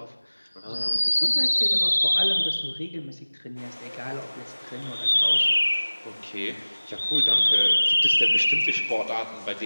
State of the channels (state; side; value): inverted; both; correlation -1.00